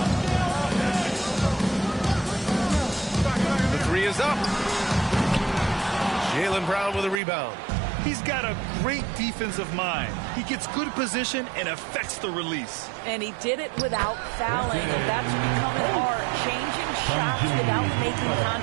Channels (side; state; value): left; drops out; at 7.2 s